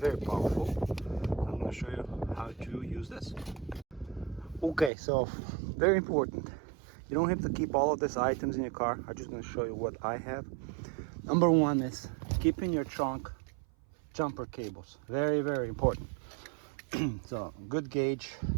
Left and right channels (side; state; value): left; drops out; at 4.9 s